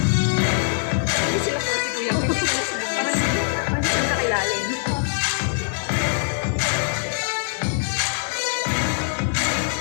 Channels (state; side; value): silent; right; digital silence